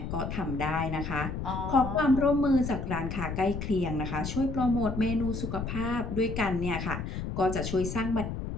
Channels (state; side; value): noise; left; rumble, 5 dB below the sound